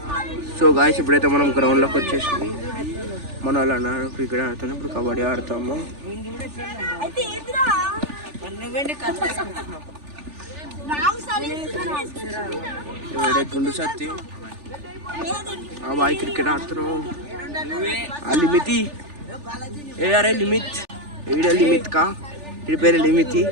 సో గాయస్ ఇప్పుడైతే మనం గ్రౌండ్లోకి వచ్చేసాం. మన వాళ్ళు అన్నారు క్రికెట్ ఆడుతాం. ఇప్పుడు కబడ్డీ ఆడతాము. గుండు సత్తి ఆ బాయ్ క్రికెట్ ఆడుతున్నావు. ఆ లిమితి అరే లిమిత్ లిమిత్ కా ఇడి పేరు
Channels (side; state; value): left; late; 3.4 ms